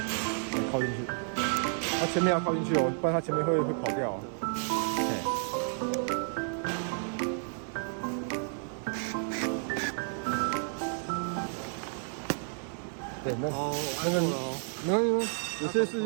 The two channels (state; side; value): silent; left; 55 dB below the other